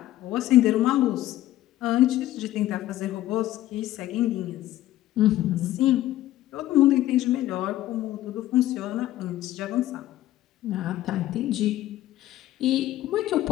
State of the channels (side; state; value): right; quieter; 14.3 dB